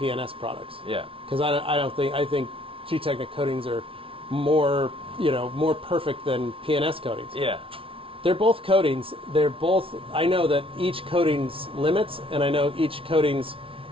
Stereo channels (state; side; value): late; left; 0.26 ms